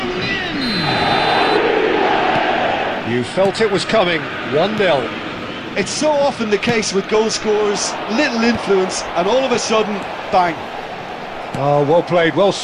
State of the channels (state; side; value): identical; both; correlation 1.00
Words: Son. You felt it was coming, 1-0. It's so often the case with goal scorers, little influence, and all of a sudden, bang. Oh, well played, well